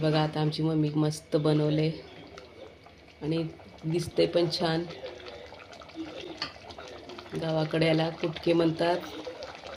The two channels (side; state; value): both; identical; correlation 1.00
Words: आता आमची मम्मी मस्त बनवले आणि दिसते पण छान. गावाकडे याला कुटके म्हणतात.